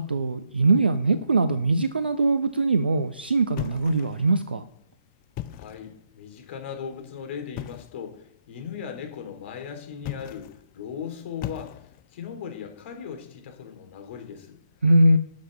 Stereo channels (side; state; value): both; inverted; correlation -0.82